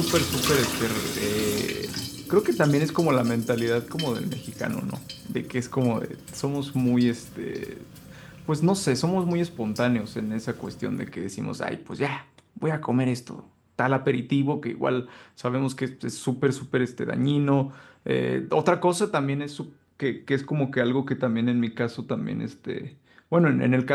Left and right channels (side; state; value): both; identical; correlation 1.00